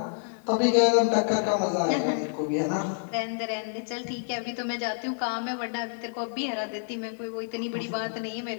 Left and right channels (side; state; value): right; silent; 59 dB below the other